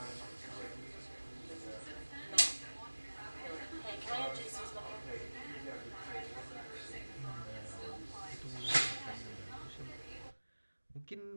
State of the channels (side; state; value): both; inverted; correlation -1.00